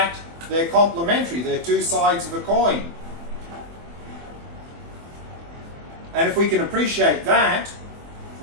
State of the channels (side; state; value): left; late; 24 ms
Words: they're complementary. They're two sides of a coin. And if we can appreciate that,